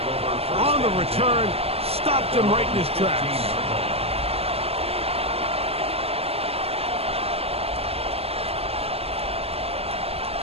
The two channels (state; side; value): late; left; 0.29 ms